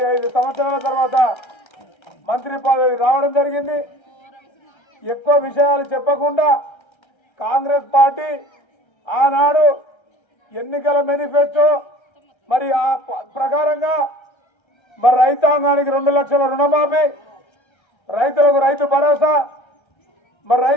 సంవత్సరాల తర్వాత మంత్రి పదవి రావడం జరిగింది. ఎక్కువ విషయాలు చెప్పకుండా కాంగ్రెస్ పార్టీ ఆనాడు ఎన్నికల మేనిఫెస్టో మరి ఆ ప్రకారంగా మరి రైతాంగానికి 2 లక్షల రుణమాఫీ, రైతులకు రైతు భరోసా, మరి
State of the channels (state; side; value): late; right; 1.3 ms